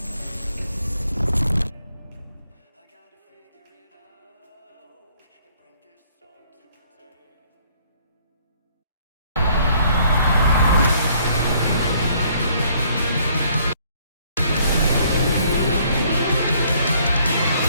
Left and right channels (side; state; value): both; inverted; correlation -0.63